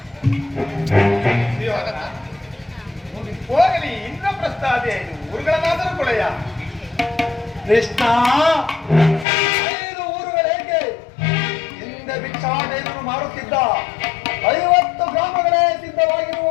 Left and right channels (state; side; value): drops out; right; at 9.2 s